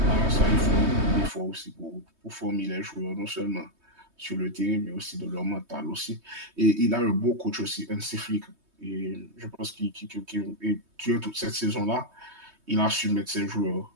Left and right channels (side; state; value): left; late; 3.2 ms